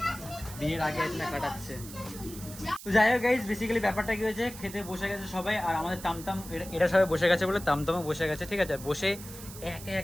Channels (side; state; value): right; noise; hiss, 14 dB below the sound